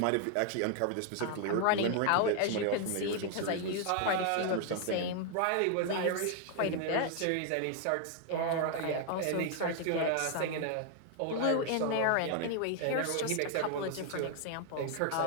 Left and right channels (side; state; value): both; different; correlation 0.00